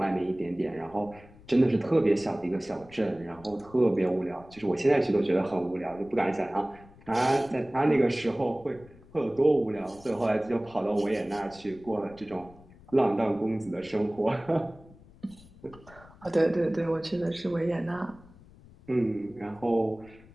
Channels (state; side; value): noise; left; rumble, 23 dB below the sound